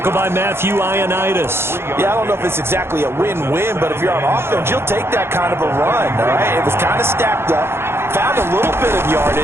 by Matthew Ioannidis. Yeah, I don't know if it's exactly a win-win, but if you're on offense, you'll take that kind of a run, all right? It was kind of stacked up. Found a little bit of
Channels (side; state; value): left; late; 0.12 ms